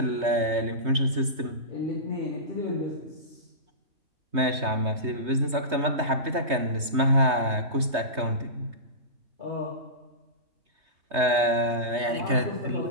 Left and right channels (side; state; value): left; late; 3.2 ms